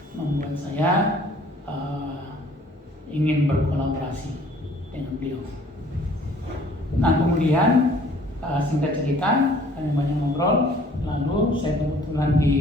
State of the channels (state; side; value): normal; both; correlation 0.55